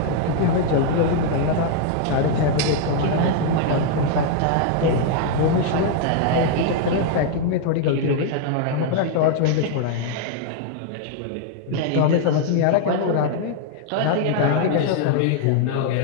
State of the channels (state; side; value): different; both; correlation 0.00